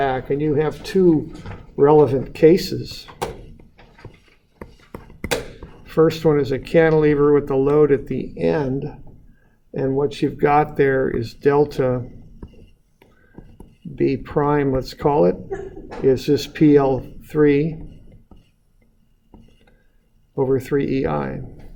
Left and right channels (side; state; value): both; identical; correlation 1.00